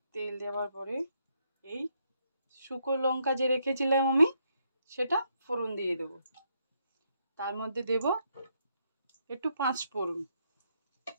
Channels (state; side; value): inverted; both; correlation -0.75